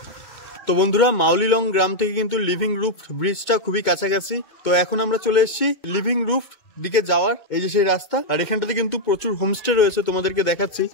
তো বন্ধুরা, মাউলিলং গ্রাম থেকে কিন্তু লিভিং রুফড ব্রিজটা খুবই কাছাকাছি। তো এখন আমরা চলে এসেছি লিভিং রুফড দিকে যাওয়ার, এই যে সেই রাস্তা। আর এখানটাতে কিন্তু প্রচুর হোমস্টে রয়েছে, তোমাদেরকে দেখাচ্ছি।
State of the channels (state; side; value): late; right; 2.2 ms